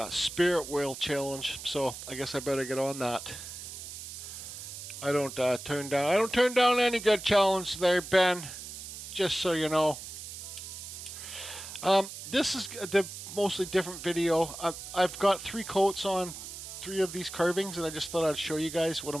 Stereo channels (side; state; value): right; noise; hiss, 10 dB below the sound